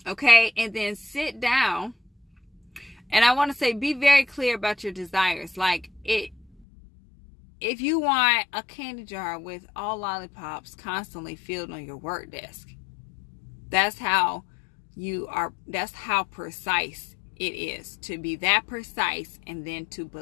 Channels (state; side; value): drops out; right; at 6.7 s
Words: Okay? And then sit down. And I want to say, be very clear about your desires. Like, if you want a candy jar with all lollipops constantly filled on your work desk, that's how precise it is. To be that precise and then to